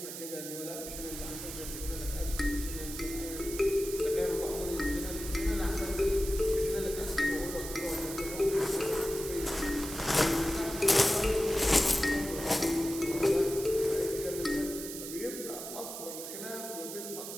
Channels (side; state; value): right; noise; hiss, 8 dB below the sound